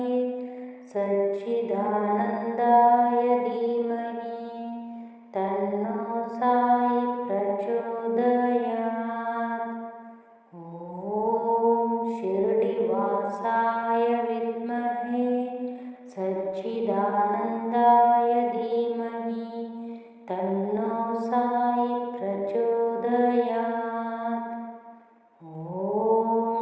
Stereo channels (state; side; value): identical; both; correlation 1.00